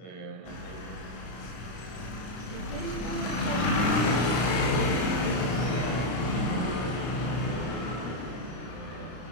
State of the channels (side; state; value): right; late; 33 ms